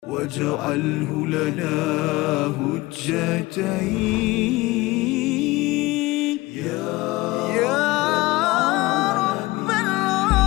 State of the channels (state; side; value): quieter; right; 20.6 dB